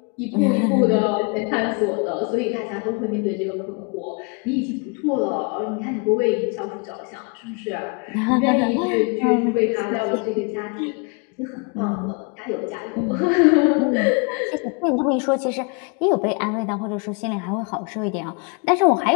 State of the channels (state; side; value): quieter; right; 33.3 dB